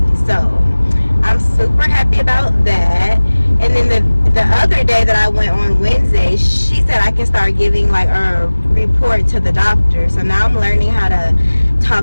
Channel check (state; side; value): inverted; both; correlation -1.00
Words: So I'm super happy about that. And then the other day that I went on Wednesday, she said I can start giving like a report to the doctor. So now I'm learning how to